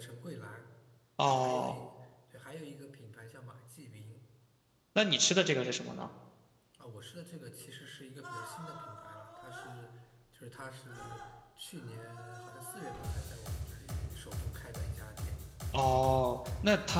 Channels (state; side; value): identical; both; correlation 1.00